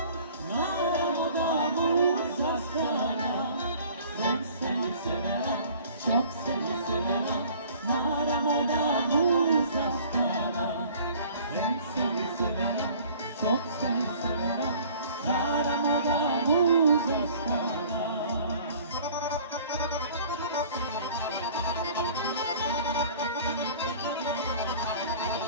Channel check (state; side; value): inverted; both; correlation -0.50